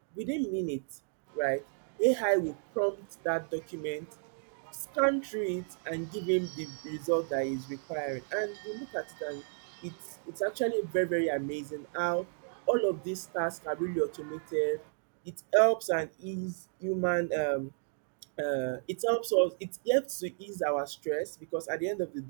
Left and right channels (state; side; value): silent; left; digital silence